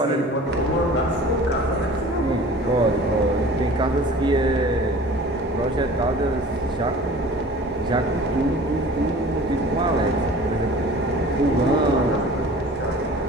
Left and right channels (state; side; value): normal; both; correlation 0.44